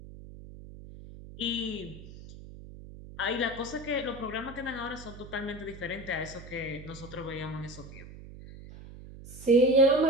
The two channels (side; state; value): right; noise; hum, 15 dB below the sound